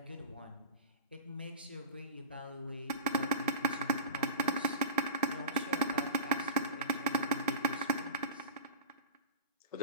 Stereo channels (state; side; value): inverted; both; correlation -0.33